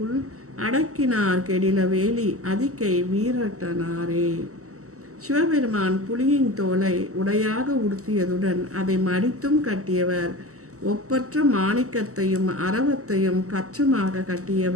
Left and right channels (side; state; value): left; late; 0.65 ms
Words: அடக்கினார் கெடில வேலி அதிகை வீரட்டனாரே. சிவபெருமான் புலியின் தோலை உடையாக உடுத்தியதுடன் அதை மடித்தும் கட்டியவர். ஒப்பற்ற மாணிக்கத்தையும் அரவத்தையும் கச்சமாக